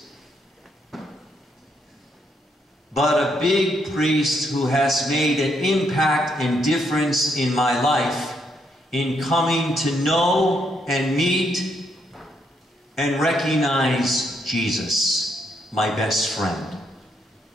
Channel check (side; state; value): both; normal; correlation 0.75